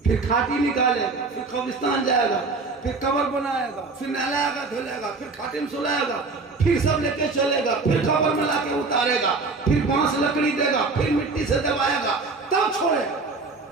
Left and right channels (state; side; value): quieter; left; 3.9 dB